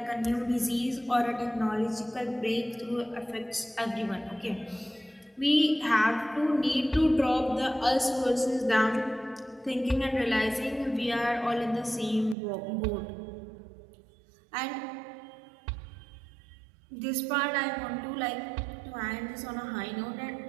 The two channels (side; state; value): left; drops out; at 12.4 s